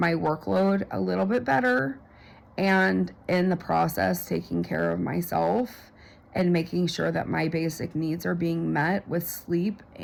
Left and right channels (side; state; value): both; identical; correlation 1.00